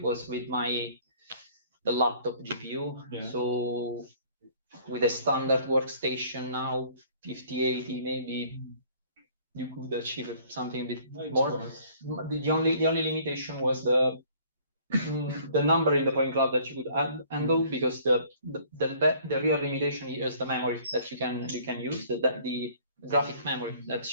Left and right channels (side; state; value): both; inverted; correlation -0.55